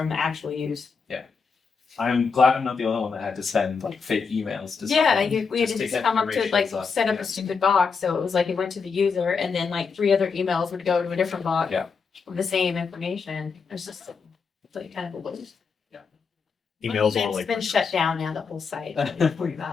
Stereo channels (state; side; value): quieter; right; 5.4 dB